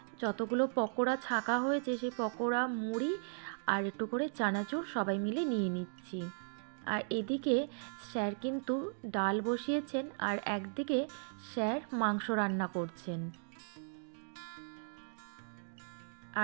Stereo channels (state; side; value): silent; left; digital silence